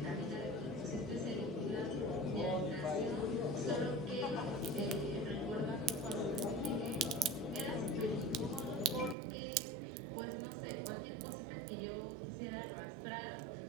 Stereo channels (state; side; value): drops out; left; at 9.2 s